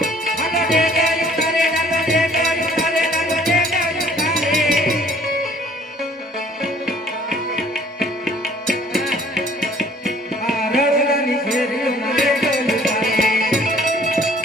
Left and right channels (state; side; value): normal; both; correlation 0.56